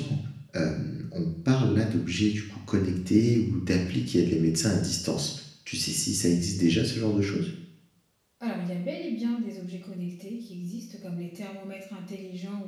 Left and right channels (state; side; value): identical; both; correlation 1.00